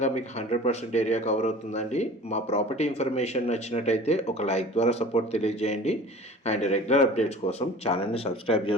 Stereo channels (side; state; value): both; normal; correlation 0.42